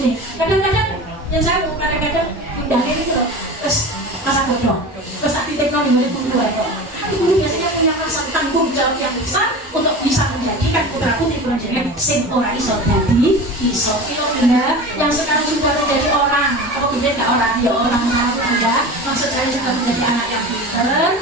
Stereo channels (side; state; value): both; normal; correlation 0.32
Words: Kadang-kadang yang saya kadang-kadang pindahnya itu loh, terus masa bodoh, terus tak titipno ning guru kok. Guru biasanya punya rasa tanggung jawab yang besar untuk bisa menjadikan putra putri kula jenengan sing ora iso dadi iso. Kilo Bunda yang sekarang sudah menjadi orang, apa beda enggak orang ya orang baru Bunda, maksud saya sudah menjadi anak yang pinter